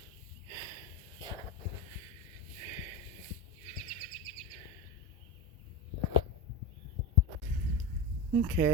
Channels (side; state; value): both; normal; correlation 0.17